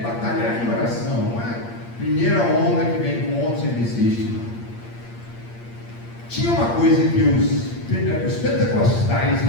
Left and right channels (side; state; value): right; late; 8.6 ms